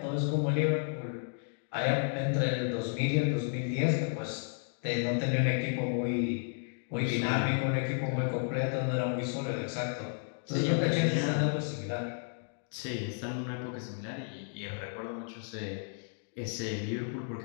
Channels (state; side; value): silent; right; 56 dB below the other